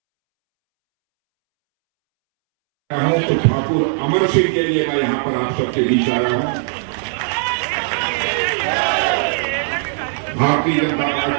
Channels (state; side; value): silent; left; 67 dB below the other